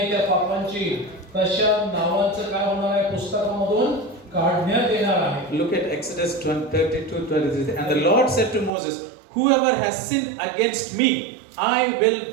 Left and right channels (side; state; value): left; drops out; at 8.7 s